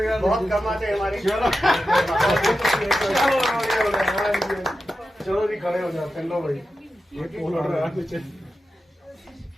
बहुत कमाते हैं हमारे। चलो जी, खड़े हो जाते हैं। लो भाई, ये पोल उड़ रहा है नीचे।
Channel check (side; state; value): both; normal; correlation 0.91